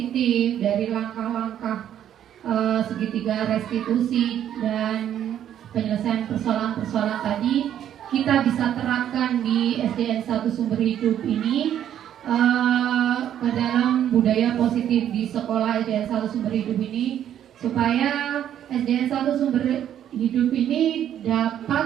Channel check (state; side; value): quieter; left; 10.4 dB